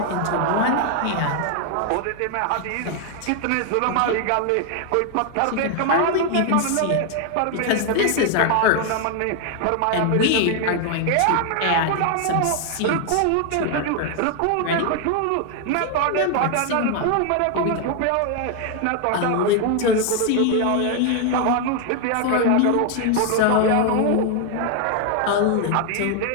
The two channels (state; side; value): different; both; correlation 0.00